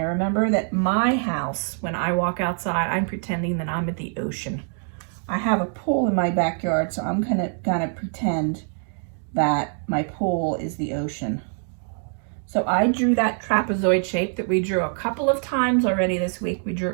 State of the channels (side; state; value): left; silent; 55 dB below the other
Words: Remember that my house, when I walk outside, I'm pretending that I'm at the ocean. I have a pool in my backyard, so I'm gonna pretend that my pool is the ocean. So I drew that trapezoid shape that we drew a couple of times already this week. We drew